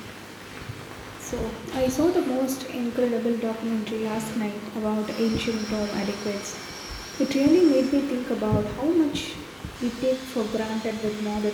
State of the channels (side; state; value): both; identical; correlation 1.00